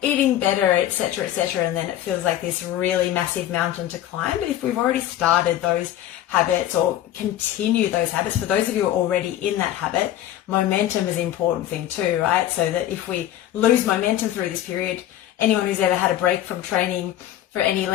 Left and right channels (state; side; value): quieter; right; 12.5 dB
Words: eating better, etc., etc. And then it feels like this really massive mountain to climb. But if we've already started those habits or continue those habits, for those of you who are already in that habit, momentum is an important thing too, right? So that if we lose momentum through this period, anyone who's ever had a break from training for any